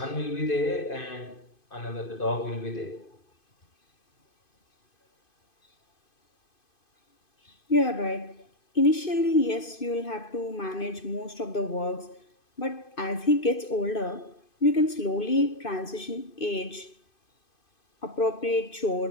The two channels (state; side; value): late; right; 2.5 ms